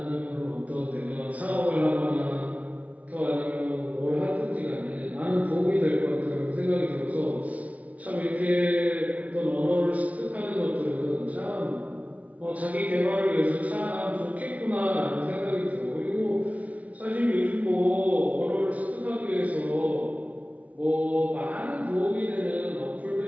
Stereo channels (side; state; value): left; late; 0.069 ms